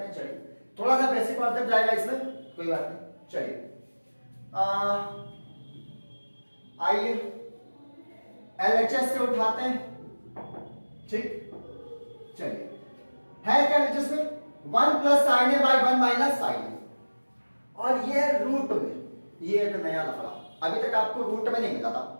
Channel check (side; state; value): both; inverted; correlation -1.00